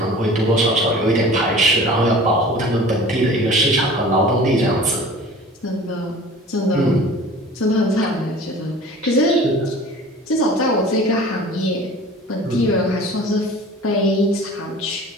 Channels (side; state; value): both; normal; correlation 0.43